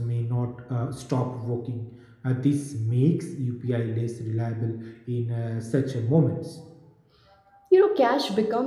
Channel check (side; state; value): both; identical; correlation 1.00